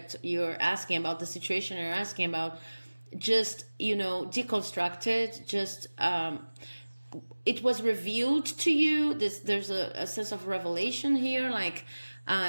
you're asking about, the situation you're asking about. just, deconstructed, just it was revealed to you. There's a sense of revelation here, like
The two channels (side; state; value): both; inverted; correlation -1.00